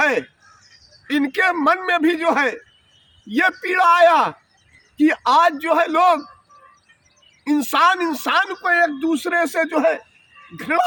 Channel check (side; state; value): both; identical; correlation 1.00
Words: इनके मन में भी जो है ये पीड़ा आया कि आज जो है लोग इंसान को एक दूसरे से जो है